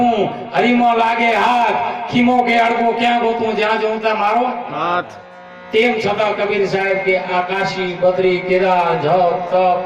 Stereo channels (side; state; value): both; identical; correlation 1.00